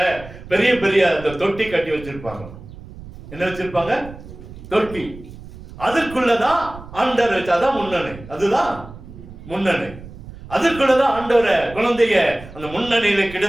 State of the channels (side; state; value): right; noise; rumble, 16 dB below the sound